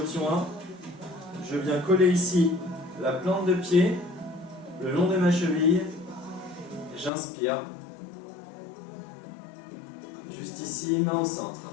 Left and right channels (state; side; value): drops out; right; at 7.1 s